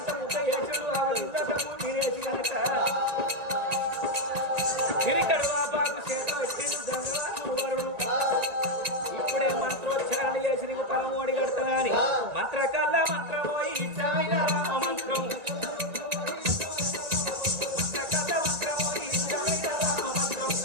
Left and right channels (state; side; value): late; left; 1.9 ms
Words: ఇప్పుడే మంత్రోచ్చారణ చేసి నీకు పరమోడి కడతానా అని మంత్రకల్ల మంత్రమో ఇచ్చాయిన రామ మంత్రం మంత్రకల్ల మంత్రమో ఇచ్చాయిన రామ మంత్రం